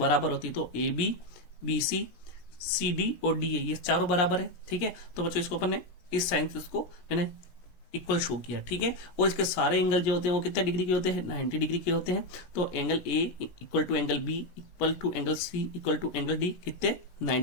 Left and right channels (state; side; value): late; right; 16 ms